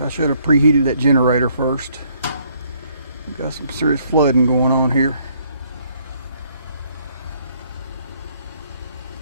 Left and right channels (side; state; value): both; inverted; correlation -0.67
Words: should have preheated that generator first. We've got some serious flooding going on here.